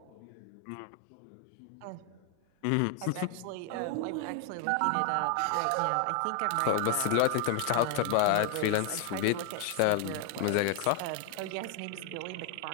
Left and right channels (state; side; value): different; both; correlation 0.00